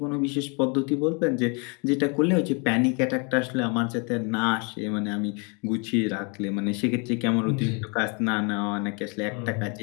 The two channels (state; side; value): quieter; right; 33.6 dB